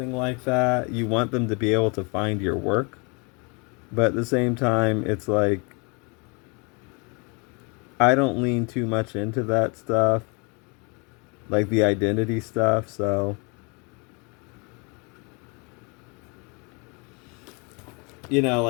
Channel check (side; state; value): right; quieter; 31.8 dB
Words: like that, you want them to be able to find your work. But at the same time, it's like, I don't lean too much into that stuff, like the identity stuff, so